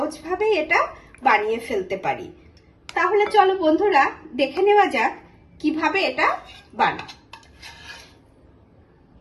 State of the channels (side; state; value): both; identical; correlation 1.00